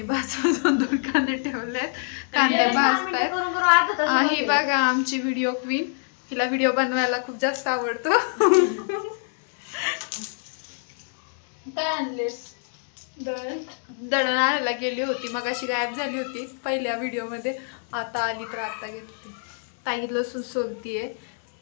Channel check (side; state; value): right; silent; 61 dB below the other